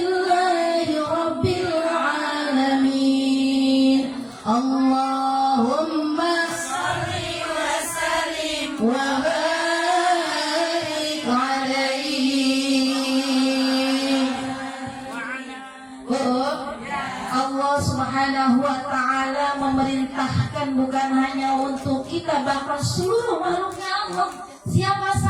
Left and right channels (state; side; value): identical; both; correlation 1.00